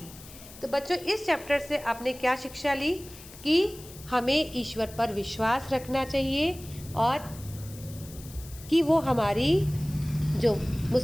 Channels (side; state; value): left; noise; hiss, 18 dB below the sound